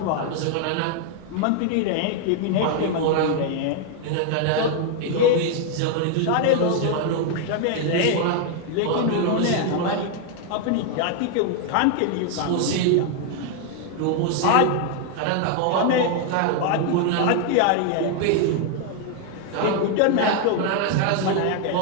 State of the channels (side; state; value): both; different; correlation 0.00